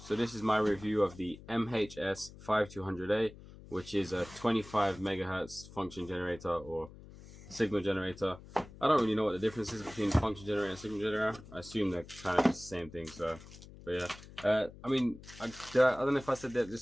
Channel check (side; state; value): left; noise; hum, 18 dB below the sound